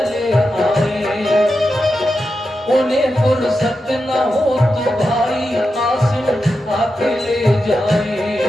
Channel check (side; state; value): both; normal; correlation 0.89